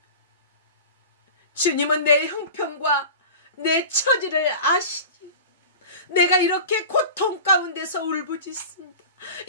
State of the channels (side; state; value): both; inverted; correlation -0.35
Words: 주님은 내 형편과 내 처지를 아시지. 내가 이렇게 고통 가운데서 울부짖습니다.